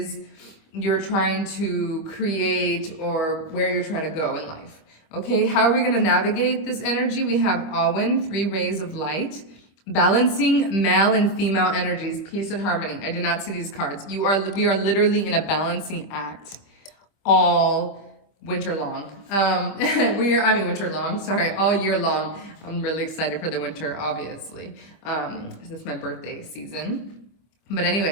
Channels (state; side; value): late; right; 25 ms